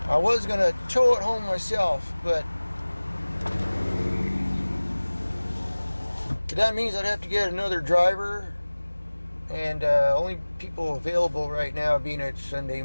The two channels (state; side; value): inverted; both; correlation -1.00